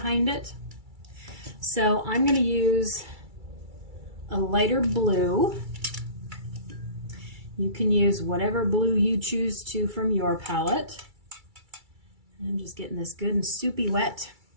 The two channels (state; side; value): late; left; 2.3 ms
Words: it. So I'm going to use a lighter blue. You can use whatever blue you choose to from your palette. I'm just getting this good and soupy wet